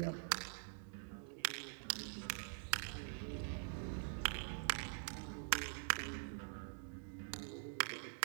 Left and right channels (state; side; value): silent; left; digital silence